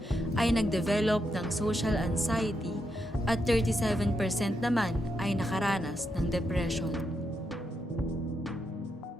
ay nagdevelop ng social anxiety at 37% naman ay nakaranas ng depression.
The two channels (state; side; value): normal; both; correlation 0.82